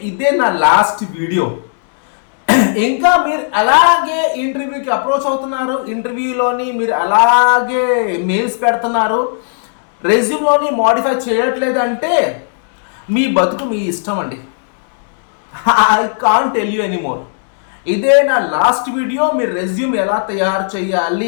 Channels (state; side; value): silent; right; digital silence